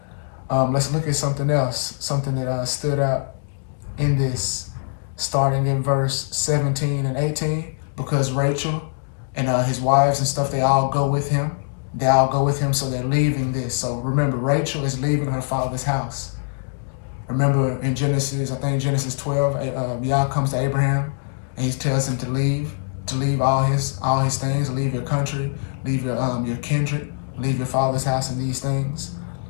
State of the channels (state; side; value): silent; right; digital silence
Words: Let's look at something else, something that stood out in this, starting in verse 17 and 18, because Rachel and his wives and stuff, they all go with him. So they're leaving this. So remember, Rachel is leaving her father's house. Remember in Genesis 12, Yah comes to Abraham and he tells him to leave all his things, leave your country, leave your kindred, leave your father's house and these things.